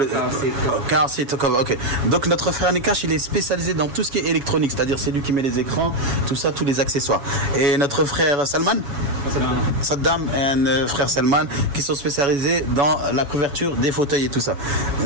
seat cover. Car seat cover, ok. Donc notre frère Nakash, il est spécialisé dans tout ce qui est électronique, c'est-à-dire c'est lui qui met les écrans, tout ça, tous les accessoires. Et notre frère Salman, Saddam et frère Salman, qui sont spécialisés dans la couverture des fauteuils et tout ça.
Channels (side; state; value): left; late; 7.1 ms